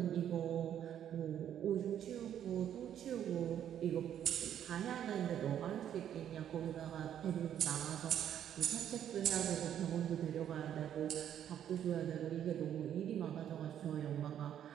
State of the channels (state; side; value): quieter; left; 10.1 dB